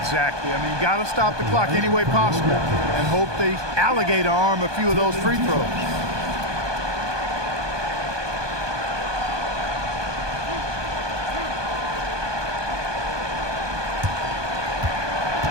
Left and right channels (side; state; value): left; late; 1.2 ms